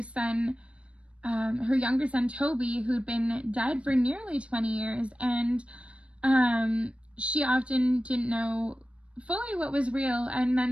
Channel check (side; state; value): left; late; 0.061 ms